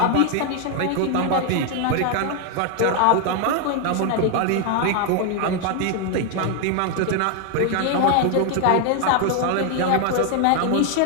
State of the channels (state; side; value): different; both; correlation 0.00